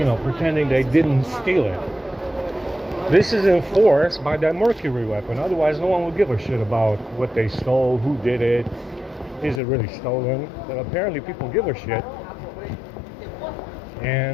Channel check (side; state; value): right; drops out; at 9.6 s